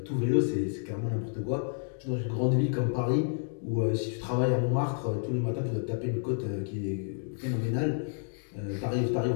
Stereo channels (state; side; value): silent; right; digital silence